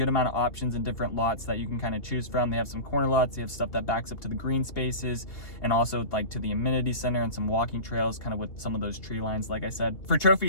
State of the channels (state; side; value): late; right; 2.8 ms